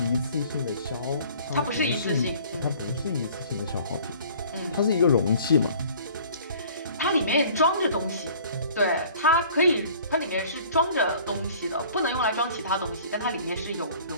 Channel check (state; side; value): inverted; both; correlation -0.50